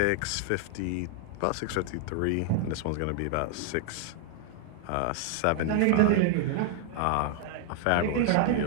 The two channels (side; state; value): both; different; correlation 0.00